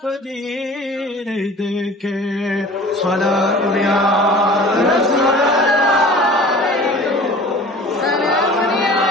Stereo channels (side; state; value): both; normal; correlation 0.43